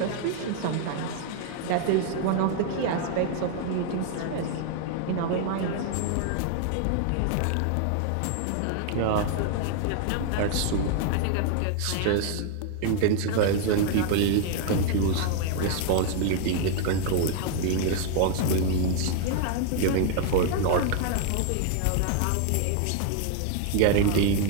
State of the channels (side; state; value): both; different; correlation 0.00